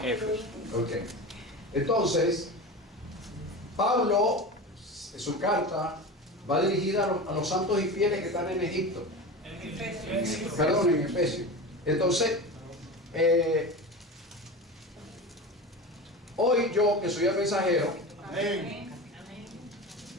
Éfeso. Ok. Entonces, Pablo, en su carta, va dirigida a los santos y fieles que están en Egipto. Perdón, en Efesios. Entonces, hoy yo, que soy el mensajero,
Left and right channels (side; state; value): both; normal; correlation 0.28